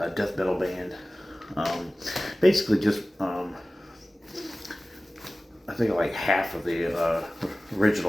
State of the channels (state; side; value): normal; both; correlation 0.97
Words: death metal band. Basically just, I think like half of the